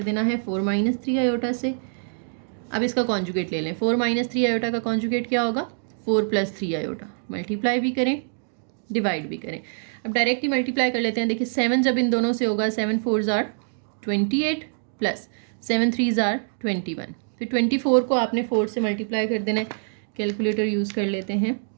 देना है, 4 - 3 आयोटा से। अब इसका कॉन्जुगेट ले लें, 4 - 3 आयोटा का कॉन्जुगेट क्या होगा, 4 + 3 आयोटा, मल्टीप्लाई भी करें डिवाइड भी करें। अब डायरेक्ट ही मल्टीप्लाई कर लेते हैं, देखिए 7 जब इन दोनों से होगा, 7 4 ज़ार 28 + 7 3 ज़ार 21, फिर 24 को आपने 4 से मल्टीप्लाई कर देना है, कैलकुलेटर यूज़ कर लेते हैं,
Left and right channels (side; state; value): left; silent; digital silence